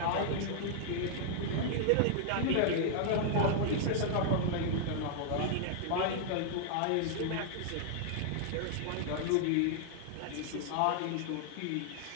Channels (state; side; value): different; both; correlation -0.01